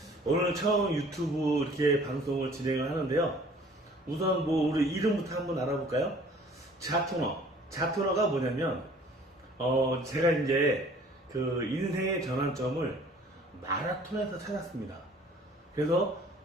오늘 처음 유튜브 이렇게 방송을 진행을 하는데요. 우선 우리 이름부터 한번 알아볼까요? 자토노. 자토노가 뭐냐면, 제가 이제 그 인생의 전환점을 마라톤에서 찾았습니다. 그래서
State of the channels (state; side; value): normal; both; correlation 0.52